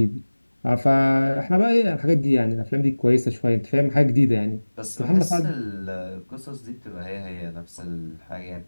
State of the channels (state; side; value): inverted; both; correlation -1.00